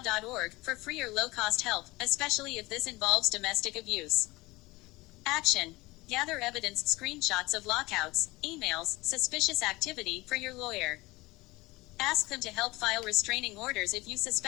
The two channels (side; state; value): right; quieter; 21.5 dB